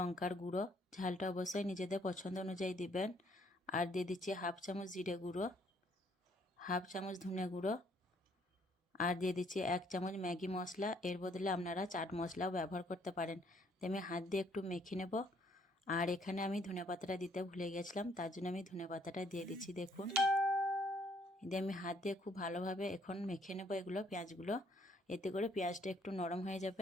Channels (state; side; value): normal; both; correlation 0.66